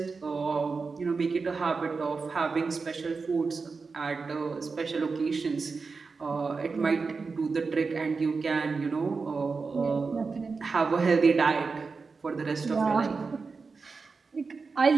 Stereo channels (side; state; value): left; quieter; 4.6 dB